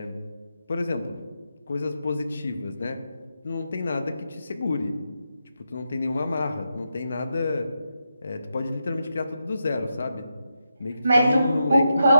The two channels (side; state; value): both; inverted; correlation -0.86